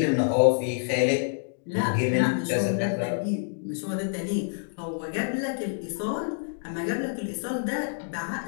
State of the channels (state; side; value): silent; right; digital silence